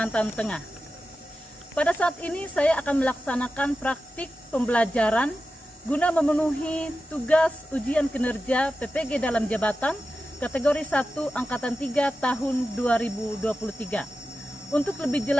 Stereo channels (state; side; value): normal; both; correlation 0.92